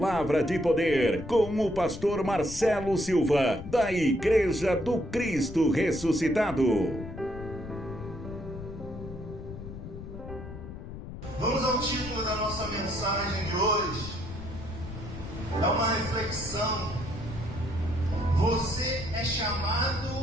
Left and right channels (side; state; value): left; noise; rumble, 11 dB below the sound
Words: de poder com o pastor Marcelo Silva, da Igreja do Cristo Ressuscitado. Vamos ao título da nossa mensagem de hoje. É uma reflexão. Você é chamado